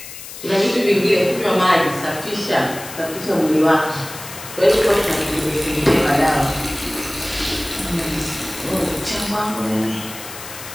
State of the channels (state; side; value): noise; left; hiss, 13 dB below the sound